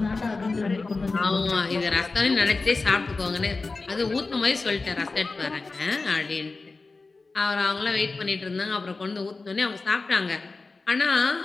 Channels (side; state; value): right; quieter; 3.8 dB